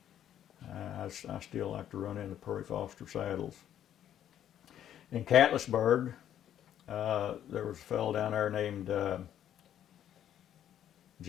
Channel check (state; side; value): quieter; right; 10.6 dB